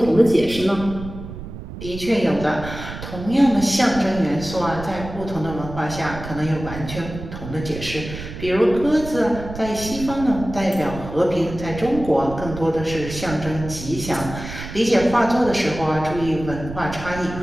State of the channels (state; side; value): noise; right; rumble, 10 dB below the sound